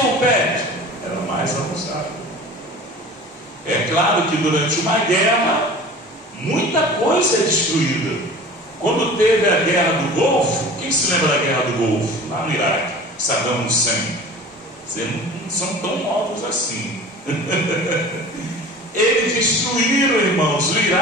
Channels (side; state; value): both; normal; correlation 0.40